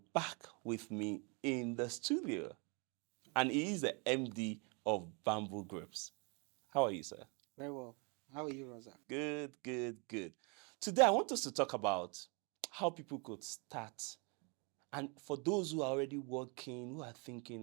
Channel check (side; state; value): left; quieter; 33.2 dB